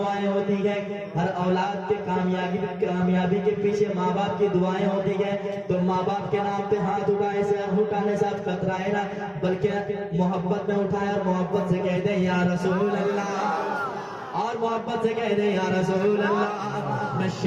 होती है। हर औलाद के कामयाबी के पीछे माँ बाप की दुआएं होती है। तो माँ बाप के नाम पे हाथ उठाने से आप कतराए ना, बल्कि मोहब्बत में उठाए और मोहब्बत से कह दे या रसूल अल्लाह, और मोहब्बत से कह दे या रसूल अल्लाह। मैं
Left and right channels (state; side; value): identical; both; correlation 1.00